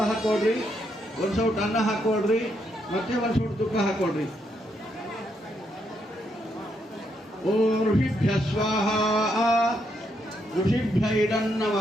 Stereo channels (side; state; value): both; normal; correlation 0.77